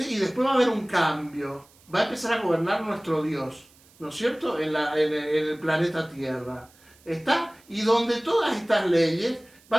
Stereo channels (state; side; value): noise; right; hiss, 29 dB below the sound